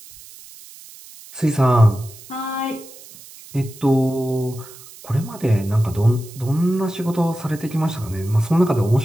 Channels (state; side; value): noise; right; hiss, 19 dB below the sound